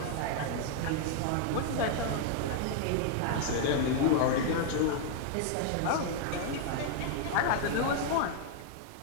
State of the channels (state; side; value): different; both; correlation 0.00